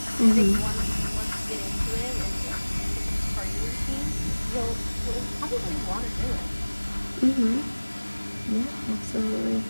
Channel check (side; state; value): both; inverted; correlation -1.00